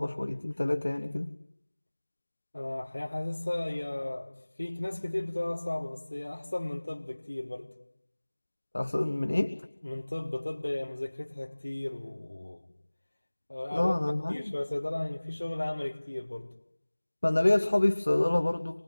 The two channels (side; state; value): both; inverted; correlation -1.00